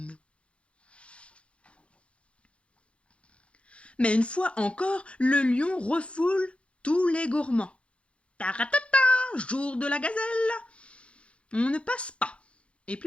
Mais une fois encore, le lion refoule tous les gourmands. Taratata, jour de la gazelle! On ne passe pas, et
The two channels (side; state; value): right; late; 0.060 ms